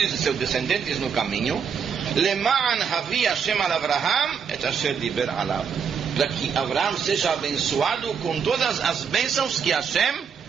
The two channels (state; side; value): quieter; left; 6.7 dB